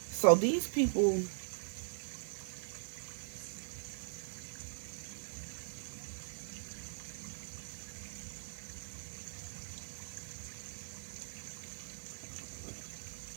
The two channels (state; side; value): silent; left; digital silence